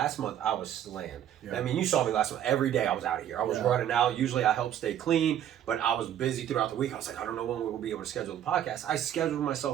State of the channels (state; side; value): quieter; left; 10.6 dB